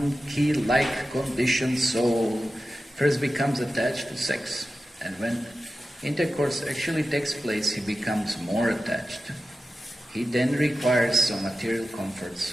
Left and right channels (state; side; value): normal; both; correlation 0.93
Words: conditioned soul first becomes attached to sex, and when intercourse actually takes place, he becomes more attached. He then requires some material comforts,